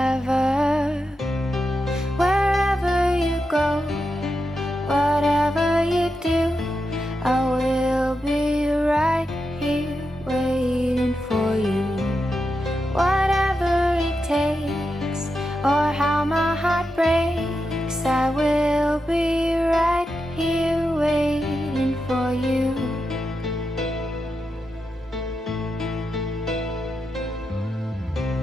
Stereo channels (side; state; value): both; normal; correlation 0.88